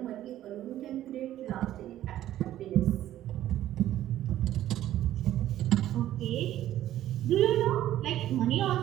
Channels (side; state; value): left; quieter; 12.9 dB